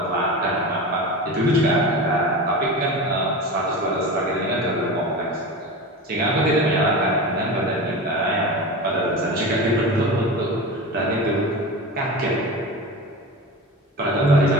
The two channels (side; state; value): both; normal; correlation 0.28